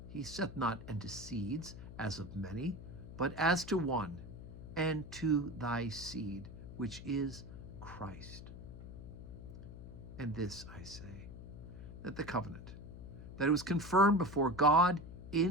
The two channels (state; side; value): noise; left; hum, 12 dB below the sound